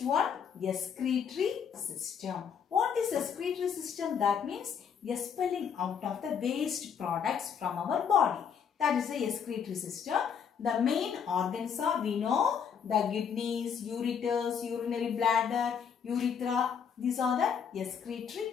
one, excretory system. What is excretory system? That means expelling out of the waste products from our body. That is the excretory system. The main organs are, we know, the kidneys, ureters, urinary bladder, urethra. These are the excretory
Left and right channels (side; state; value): right; quieter; 7.3 dB